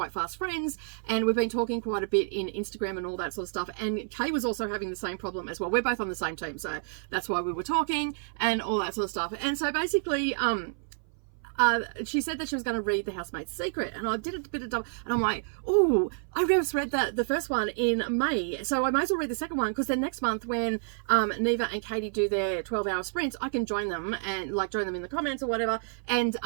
fast friends, and we've been talking quite a bit in Instagram and all that sort of stuff. And Kay was also having the same problem as well. We're both on the same team, so that's why we were talking and all that sort of stuff. And so basically she said that she was going to read The Housemaid's Secret, and I did a bit of double, and I'm like, oh, I just read the first one in May, so I might as well read the second one, because then next month when Neva and Katie do their 12-hour sprints, I can join them and join them in the comments or whatever, and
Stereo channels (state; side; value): silent; left; 58 dB below the other